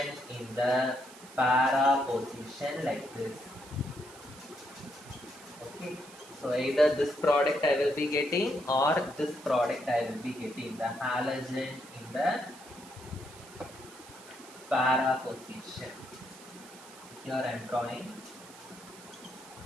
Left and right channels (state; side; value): noise; right; hiss, 19 dB below the sound